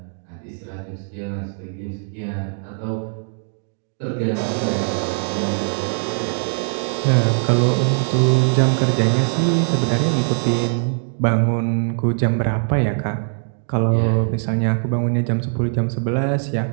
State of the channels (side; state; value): left; silent; 59 dB below the other